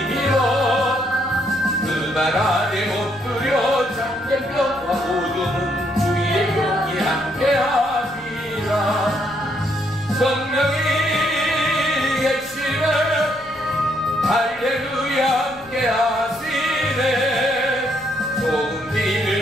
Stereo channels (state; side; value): noise; left; rumble, 25 dB below the sound